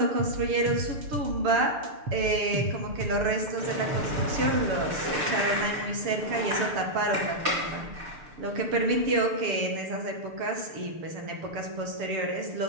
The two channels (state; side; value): late; left; 6.7 ms